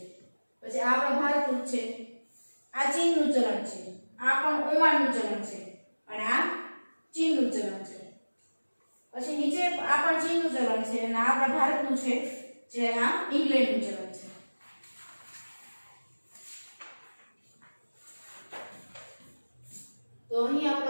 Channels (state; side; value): inverted; both; correlation -1.00